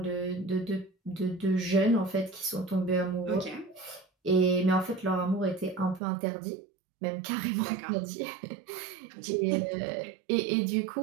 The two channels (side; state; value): left; drops out; at 6.0 s